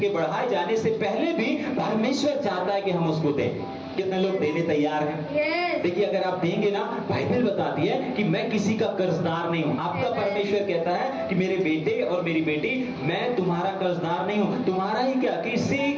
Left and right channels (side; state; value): both; identical; correlation 1.00